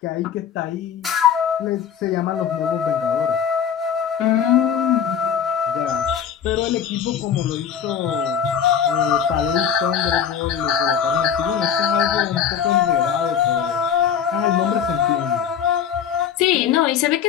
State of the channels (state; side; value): quieter; right; 8.1 dB